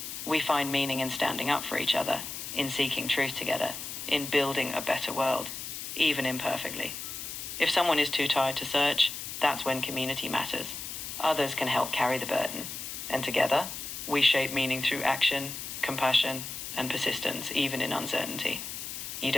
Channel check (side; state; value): left; noise; hiss, 7 dB below the sound